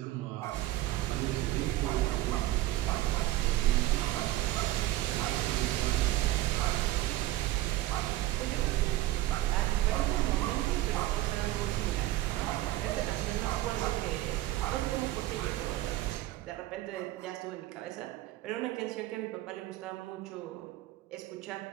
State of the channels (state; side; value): quieter; left; 15.9 dB